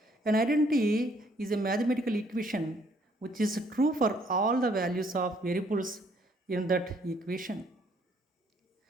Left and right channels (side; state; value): both; normal; correlation 0.65